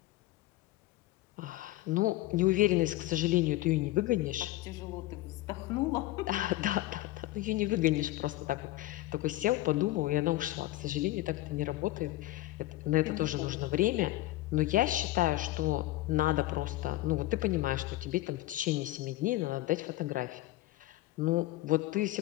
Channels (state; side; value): quieter; right; 17.0 dB